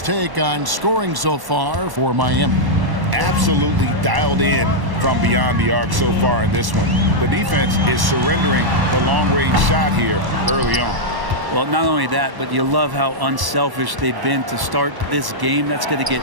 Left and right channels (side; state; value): left; late; 1.1 ms